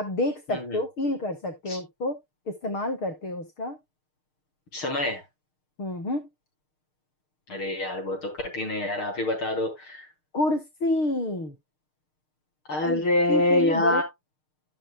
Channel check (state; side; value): late; right; 6.5 ms